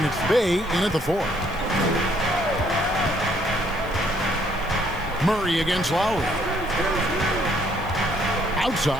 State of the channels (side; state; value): right; noise; hiss, 24 dB below the sound